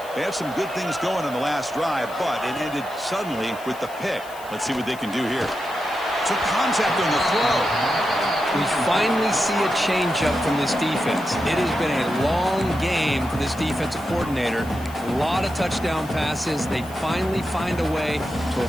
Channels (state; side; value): noise; left; hiss, 20 dB below the sound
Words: They had some good things going on the last drive, but it ended suddenly with the pick. Let's see what they can do here. Took contact on the throw. We finally see a change-up from this defense. It has been a long game for this defensive coordinator. A lot of touchdown passes. They finally find a way to